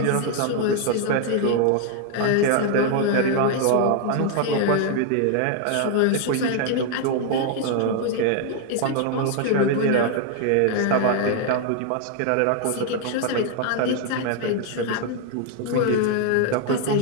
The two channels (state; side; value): different; both; correlation 0.00